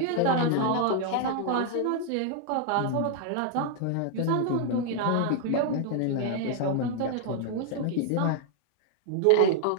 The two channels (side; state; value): both; different; correlation 0.00